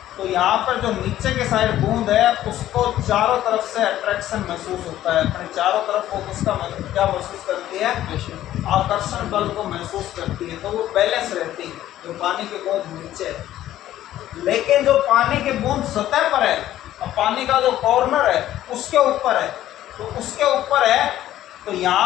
तो यहाँ पर जो नीचे के साइड बूंद है उसको चारों तरफ से अट्रैक्शन महसूस होता है, अपने चारों तरफ वो उसका क्या महसूस करती है, आकर्षण बल को महसूस करती है, तो वो बैलेंस रहती है जो पानी की बूंद नीचे है। लेकिन जो पानी की बूंद सतह पर है और पानी का जो कॉर्नर है उसके ऊपर है, तो उसके ऊपर है, तो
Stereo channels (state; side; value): quieter; right; 13.1 dB